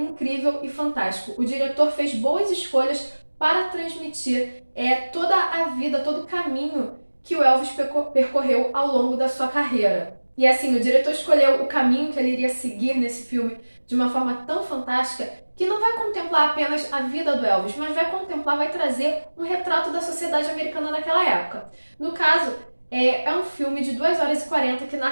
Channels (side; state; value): both; inverted; correlation -1.00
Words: e fantástico. O diretor fez boas escolhas para transmitir toda a vida, todo o caminho que o Elvis percorreu ao longo da sua carreira. E assim, o diretor escolheu o caminho que ele iria seguir nesse filme de uma forma tão fantástica que não vai contemplar apenas a vida do Elvis, mas vai trazer um retrato da sociedade americana naquela época. No caso, é um filme de 2 horas e 40 que